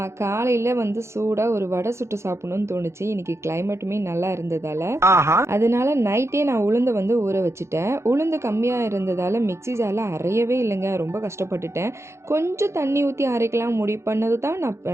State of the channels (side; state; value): left; late; 0.13 ms